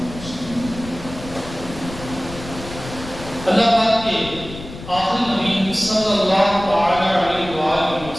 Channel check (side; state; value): left; noise; rumble, 13 dB below the sound